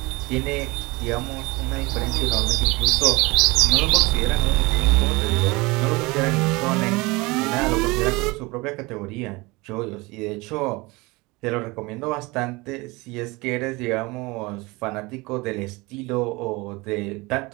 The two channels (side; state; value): left; quieter; 23.9 dB